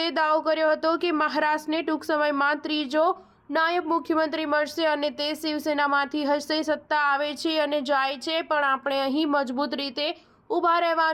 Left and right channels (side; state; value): both; identical; correlation 1.00